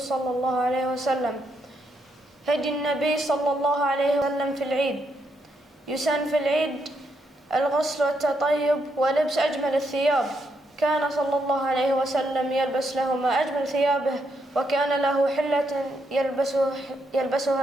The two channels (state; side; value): normal; both; correlation 0.78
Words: الله عليه وسلم. هدي النبي صلى الله عليه وسلم في العيد. يسن في العيد الغسل والتطيب ولبس أجمل الثياب. كان صلى الله عليه وسلم يلبس لهما أجمل ثيابه، وكان له حلة